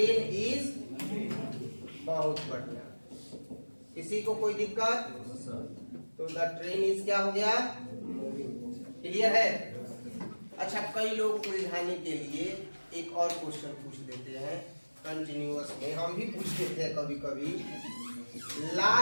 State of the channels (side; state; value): both; inverted; correlation -1.00